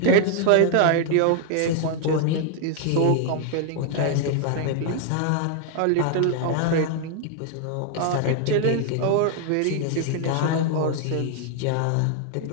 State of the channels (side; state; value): both; different; correlation 0.00